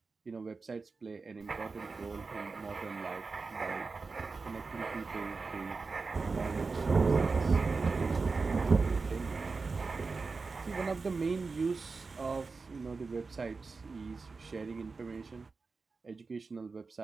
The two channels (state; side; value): quieter; left; 4.3 dB